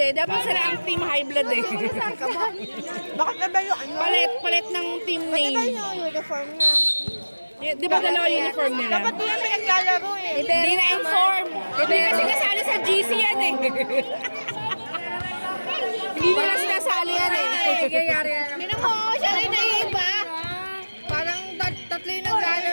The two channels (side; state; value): both; inverted; correlation -1.00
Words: Dapat sila ang team high blood eh. Bakit na ba yung ano? Palit ng team Bakit ba name. yung uniform nga? Di ba dalawa uniform nila? Dapat di yan pinaglalaro eh. Hindi na-inform. Hindi kasi kasali sa GC yan eh. Hindi nila sinasali yan eh. Tinan mo, siya rin naiiba. Parang tatlo yung